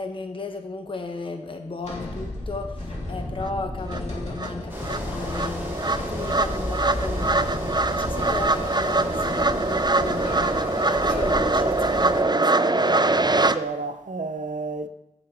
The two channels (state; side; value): normal; both; correlation 0.44